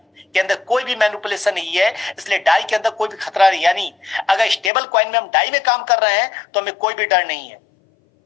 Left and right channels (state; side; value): drops out; right; at 4.7 s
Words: के अंदर कोई भी मैनिपुलेशन नहीं है, इसलिए डाई के अंदर कोई भी खतरा नहीं। यानी अगर स्टेबल कॉइन में हम डाई में काम कर रहे हैं तो हमें कोई भी डर नहीं है।